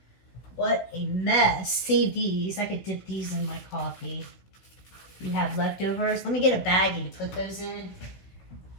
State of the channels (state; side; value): late; right; 16 ms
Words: What a mess. Save these. I could dip these in my coffee. You have leftovers. Let me get a baggie to put those in.